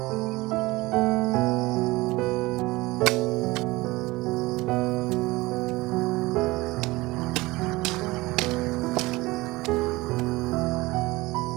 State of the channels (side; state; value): left; quieter; 20.9 dB